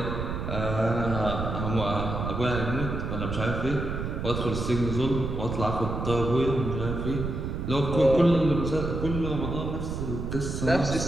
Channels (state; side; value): noise; right; rumble, 4 dB below the sound